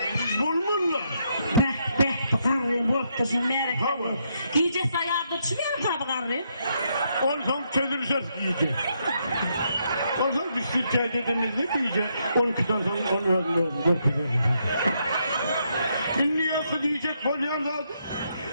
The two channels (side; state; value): both; inverted; correlation -0.77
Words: bulmurlar. Bıraktırsın merak etme. Giyecek sayarda çıkıyor tabi karı. Olsan çözülsün giyecek. Olsan biz Türkçe dediğimizde giyecek. 12'den sonra onu öldürüyoruz. Niye diyecek bolyan zaten?